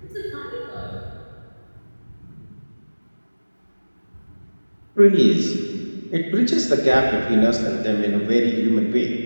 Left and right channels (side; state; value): both; inverted; correlation -1.00